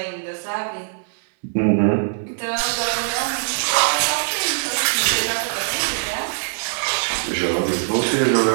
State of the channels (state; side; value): silent; left; 65 dB below the other